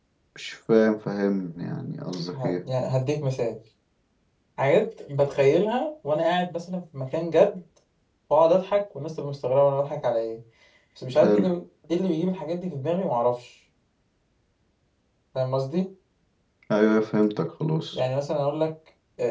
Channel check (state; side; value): identical; both; correlation 1.00